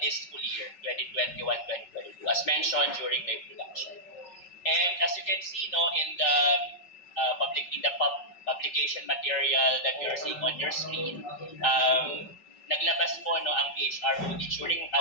this school year, 2021-2022, as mentioned during the introduction. And as you can see, in the publication material that you're seeing on your screen, naglabas po ang PHROD during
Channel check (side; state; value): right; late; 5.3 ms